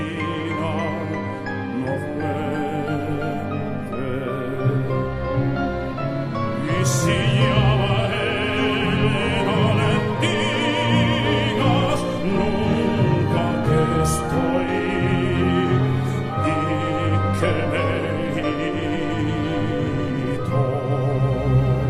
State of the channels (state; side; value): identical; both; correlation 1.00